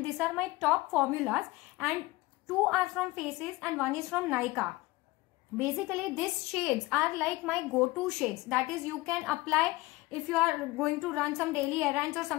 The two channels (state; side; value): quieter; right; 20.4 dB